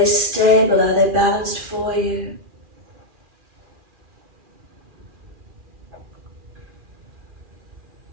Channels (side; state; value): left; late; 2.4 ms